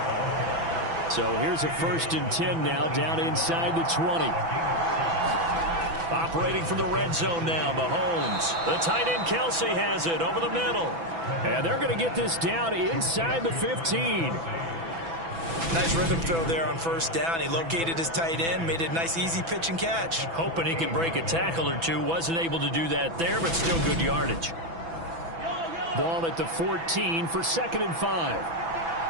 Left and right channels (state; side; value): late; left; 6.0 ms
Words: So here's a 1st and 10 now, down inside the 20. Operating from the red zone now, Mahomes. The tight end Kelsey has it over the middle. And they're going to get this down inside the 15. Nice rhythm throw there on first down. He located his tight end, made it a nice easy pitch and catch. Hoping he can break a tackle or two. Wasn't able to do that there, but still good yardage. Ball at the 14 for 2nd and 5.